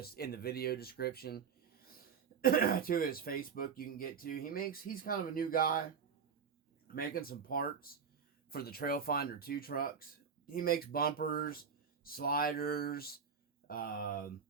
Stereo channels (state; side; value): quieter; left; 6.5 dB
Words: in the video description to his Facebook you can get to. He's kind of a new guy making some parts for the Trailfinder 2 trucks. He makes bumpers, sliders, some